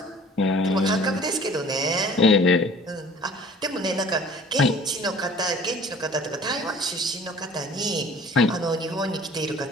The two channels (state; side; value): normal; both; correlation 0.49